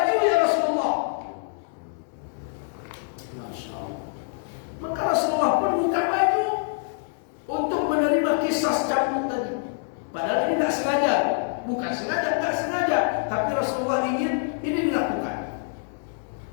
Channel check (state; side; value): silent; right; digital silence